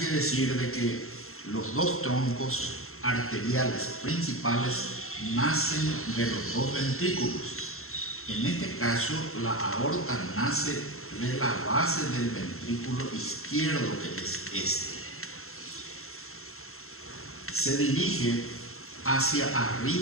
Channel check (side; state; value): right; late; 0.62 ms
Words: decir de que los 2 troncos arteriales principales nacen de los 2 ventrículos. En este caso, la aorta nace de la base del ventrículo izquierdo, que es este. Se dirige hacia